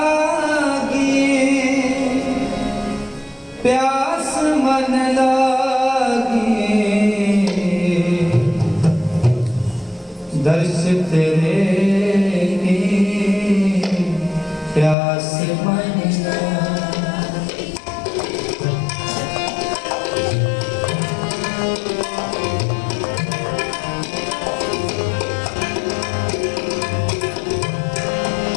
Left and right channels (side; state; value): right; drops out; at 15.0 s